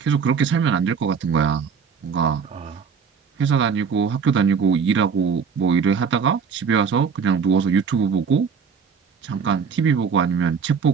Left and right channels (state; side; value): quieter; left; 6.1 dB